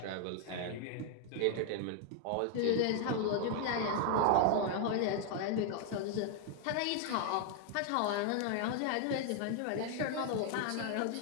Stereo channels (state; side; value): different; both; correlation 0.00